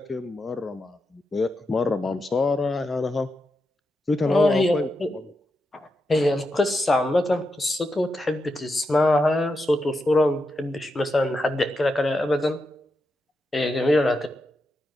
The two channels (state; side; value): normal; both; correlation 0.86